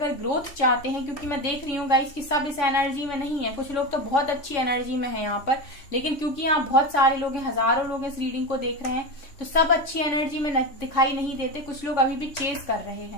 ग्रोथ चाहते हैं, क्योंकि मैं देख रही हूँ गाइस कि सब इस एनर्जी में नहीं है, कुछ लोग तो बहुत अच्छी एनर्जी में है यहाँ पर, लेकिन क्योंकि यहाँ बहुत सारे लोग हैं, हजारों लोग इस रीडिंग को देख रहे हैं, तो सब अच्छी एनर्जी में दिखाई नहीं देते, कुछ लोग अभी भी चेस कर रहे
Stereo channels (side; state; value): right; late; 3.5 ms